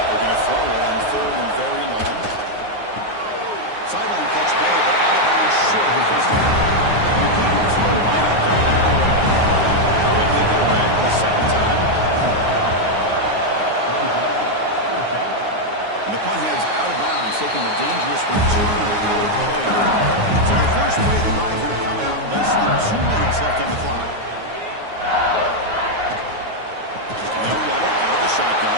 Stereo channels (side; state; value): left; late; 9.5 ms